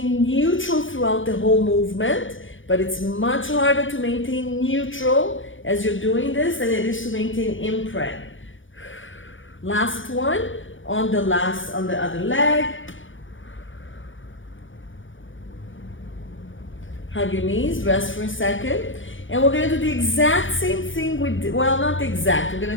neutral throughout the whole movement, but it's much harder to maintain neutral as you're doing this than it is to maintain imprint. Last one on the other leg. Hug your knees, rest for a second. And we're gonna do the exact same thing we did, well, not the exact, we're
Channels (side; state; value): right; late; 0.56 ms